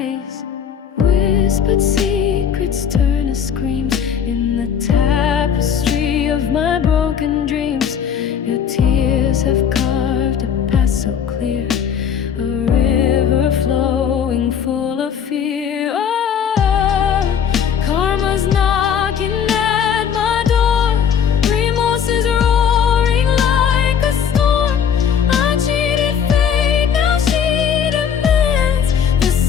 Whispered secrets turn to screams in the tapestry of my broken dreams. Your tears have carved a path so clear, a river flowing full of fear. Oh, karma's knocking at my door. Remorse is roaring like a storm. I cheated fate, now she demands the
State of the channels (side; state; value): right; quieter; 7.8 dB